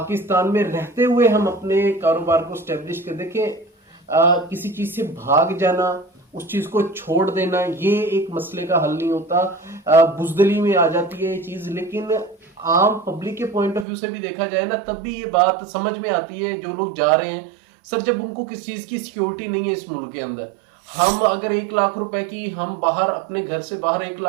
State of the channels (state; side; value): drops out; left; at 13.9 s